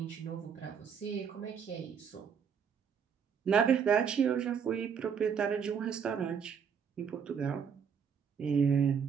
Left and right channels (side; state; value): left; quieter; 7.0 dB